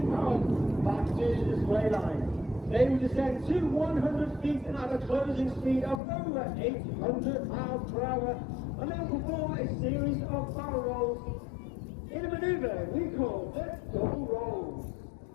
pounds back to the display line. They will descend to 100 feet at a closing speed of over 800 miles per hour, and they will perform a series of barrel rolls in a manoeuvre we call the double rolls.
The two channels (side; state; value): right; drops out; at 6.0 s